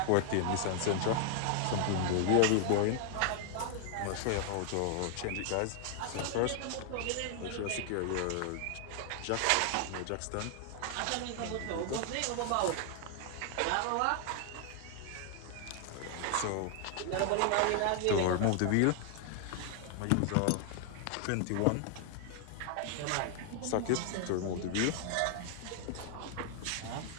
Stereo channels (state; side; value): different; both; correlation 0.00